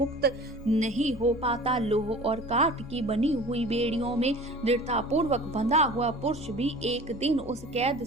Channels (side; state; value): both; normal; correlation 0.42